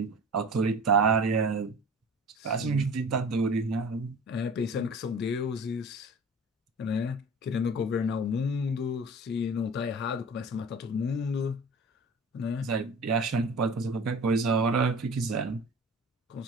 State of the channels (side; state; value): both; normal; correlation 0.40